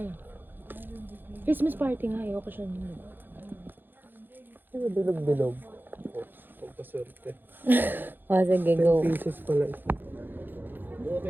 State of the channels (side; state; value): left; late; 0.094 ms